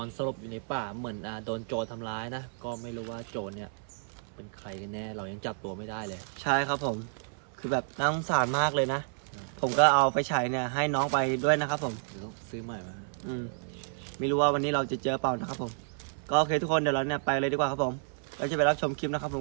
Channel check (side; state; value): left; silent; 57 dB below the other